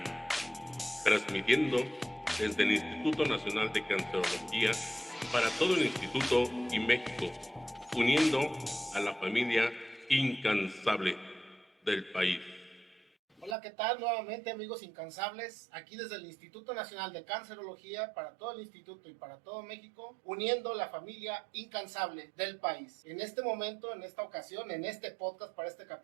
transmitiendo desde el Instituto Nacional de Cancerología para todo el Instituto y México, uniendo a la familia incansable del país. Hola, ¿qué tal? Nuevamente, amigos incansables, aquí desde el Instituto Nacional de Cancerología para todo el instituto y para todo México, uniendo la familia incansable del país. En este momento, en esta ocasión, en este podcast, para este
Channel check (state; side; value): drops out; left; at 13.6 s